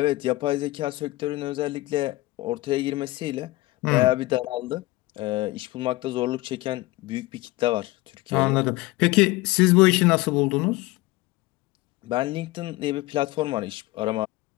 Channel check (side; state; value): right; quieter; 19.8 dB